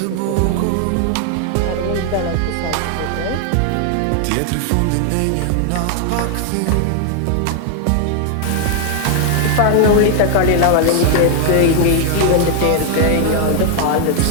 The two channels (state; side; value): different; both; correlation 0.00